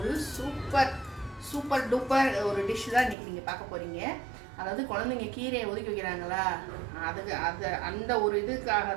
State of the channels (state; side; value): drops out; left; at 3.2 s